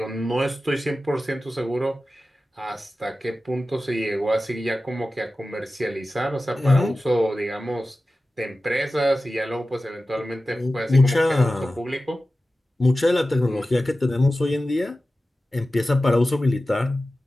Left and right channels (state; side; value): normal; both; correlation 0.94